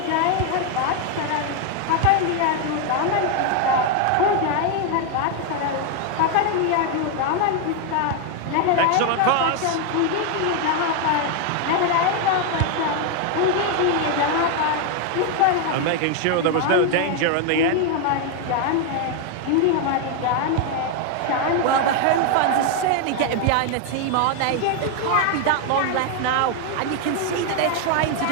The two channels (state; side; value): different; both; correlation 0.01